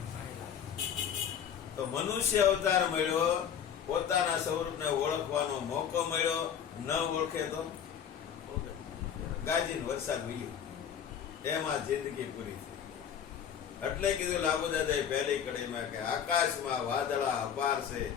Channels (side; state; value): right; quieter; 8.4 dB